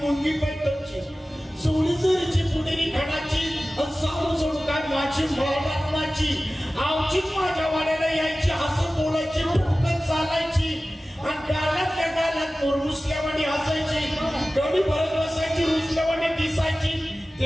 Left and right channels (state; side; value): normal; both; correlation 0.96